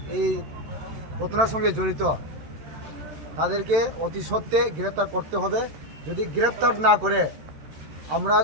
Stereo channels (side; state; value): left; late; 13 ms